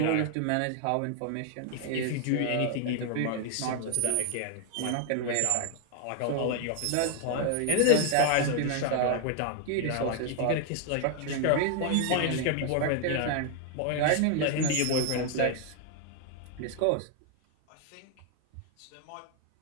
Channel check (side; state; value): both; different; correlation 0.00